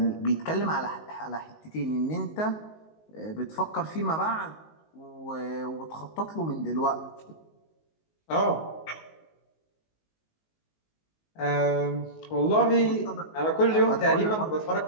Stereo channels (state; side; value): late; right; 19 ms